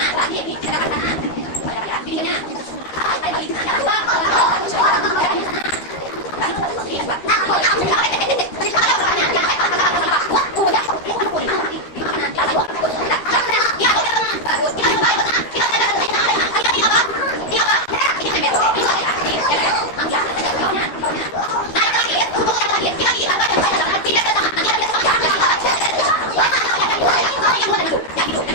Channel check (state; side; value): late; right; 13 ms